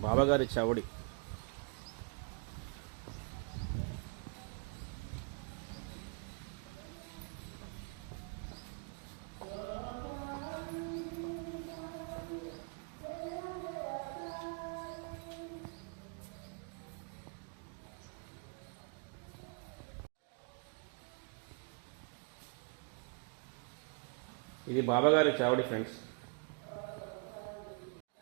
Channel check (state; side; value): quieter; left; 35.4 dB